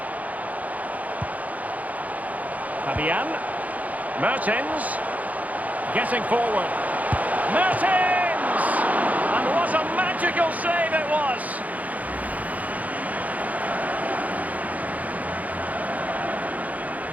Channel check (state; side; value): late; left; 0.075 ms